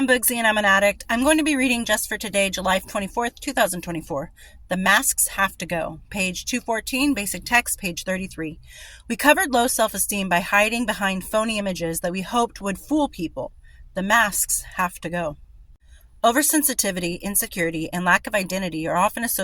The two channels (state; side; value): identical; both; correlation 1.00